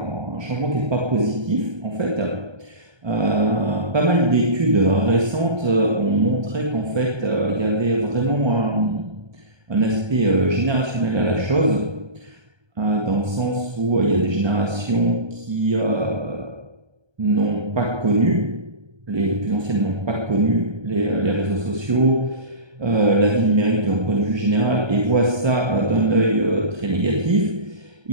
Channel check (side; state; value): left; late; 1.3 ms